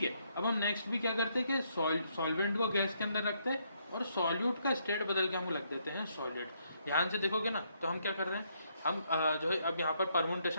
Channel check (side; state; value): both; inverted; correlation -0.73